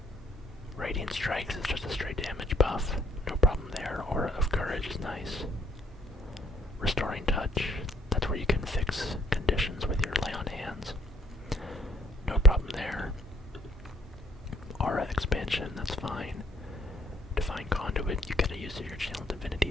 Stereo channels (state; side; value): normal; both; correlation 0.64